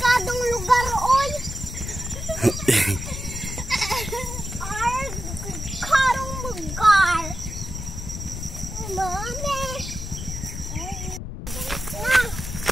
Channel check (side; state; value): left; noise; rumble, 7 dB below the sound